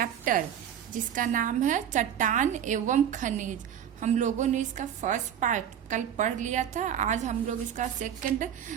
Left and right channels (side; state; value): left; quieter; 9.5 dB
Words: जिसका नाम है चट्टान एवं खनिज। हम लोगों ने इसका फर्स्ट पार्ट कल पढ़ लिया था, आज हम लोग इसका सेकंड